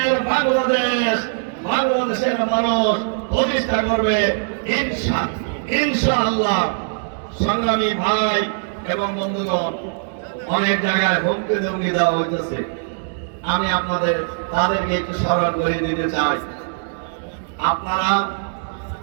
বাংলাদেশ বাংলাদেশের মানুষ প্রতিষ্ঠা করবে ইনশাআল্লাহ। সংগ্রামী ভাই এবং বন্ধুগণ, অনেক জায়গায় হুমকি ধমকি দেওয়া হইতেছে। আমি তাদেরকে একটু স্মরণ করে দিতে চাই।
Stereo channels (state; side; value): silent; left; digital silence